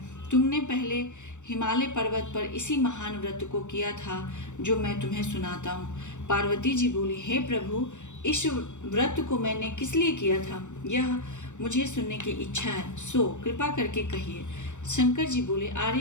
तुमने पहले हिमालय पर्वत पर इसी महान व्रत को किया था जो मैं तुम्हें सुनाता हूँ। पार्वती जी बोली, हे प्रभु, इस व्रत को मैंने किस लिए किया था, यह मुझे सुनने की इच्छा है, सो कृपा करके कहिए। शंकर जी बोले,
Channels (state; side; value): late; right; 0.84 ms